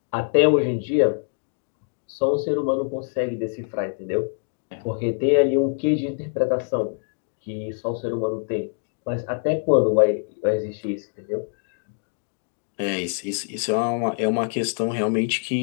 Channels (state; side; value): silent; right; digital silence